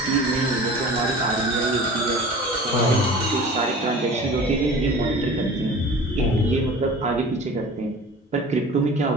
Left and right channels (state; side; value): normal; both; correlation 0.40